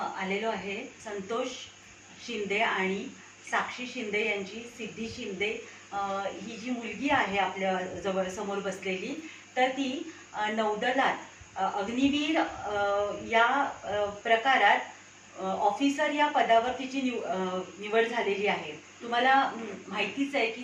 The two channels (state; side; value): identical; both; correlation 1.00